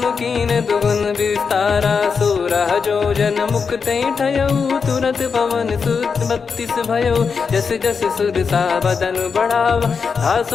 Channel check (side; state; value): right; quieter; 5.6 dB